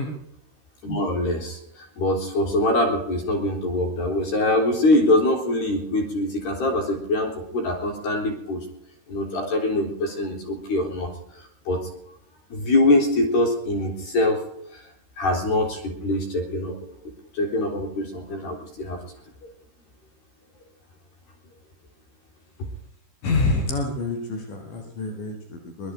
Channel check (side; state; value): right; late; 13 ms